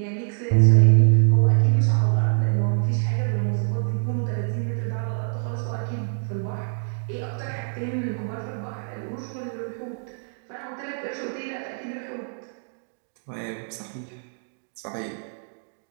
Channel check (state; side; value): silent; left; digital silence